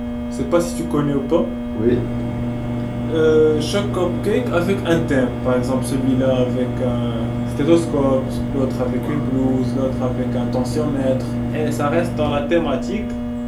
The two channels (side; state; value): both; identical; correlation 1.00